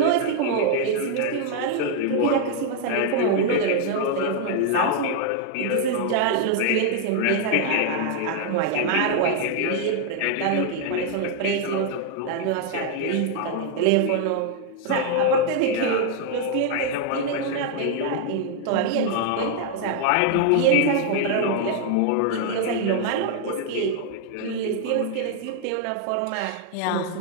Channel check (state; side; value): different; both; correlation 0.00